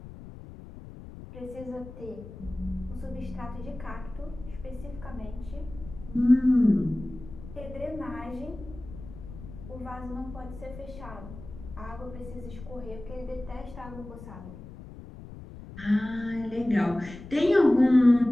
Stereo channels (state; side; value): noise; left; rumble, 14 dB below the sound